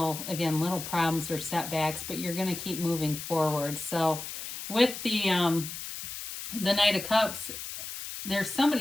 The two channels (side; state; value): left; noise; hiss, 8 dB below the sound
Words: problems or setbacks, but you're going to keep moving forward. So with the Knight of Cups, there's